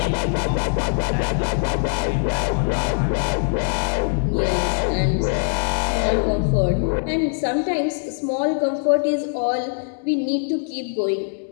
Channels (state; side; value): silent; right; digital silence